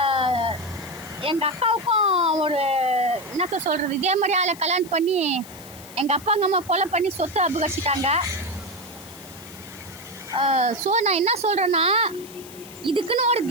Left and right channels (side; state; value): left; noise; hiss, 18 dB below the sound